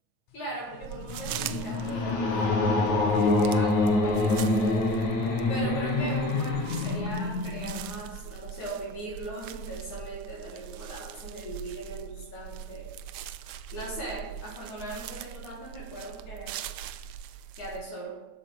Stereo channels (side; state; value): right; late; 8.5 ms